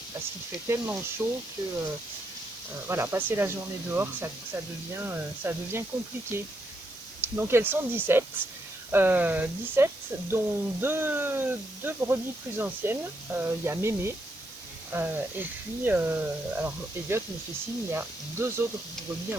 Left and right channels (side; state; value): right; noise; hiss, 18 dB below the sound